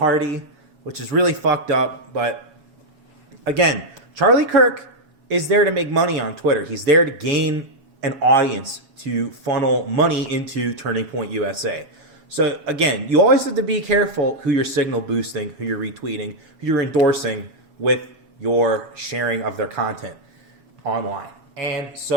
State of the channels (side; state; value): left; late; 7.2 ms